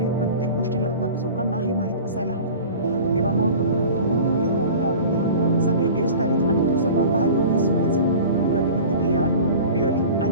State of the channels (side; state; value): both; inverted; correlation -0.39